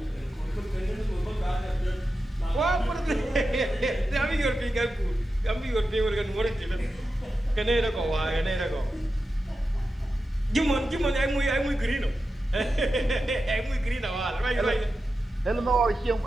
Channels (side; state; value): both; normal; correlation 0.91